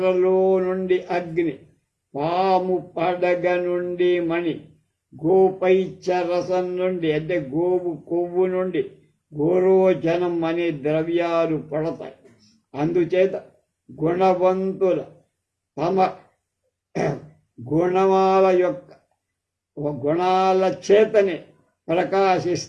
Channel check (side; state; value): both; identical; correlation 1.00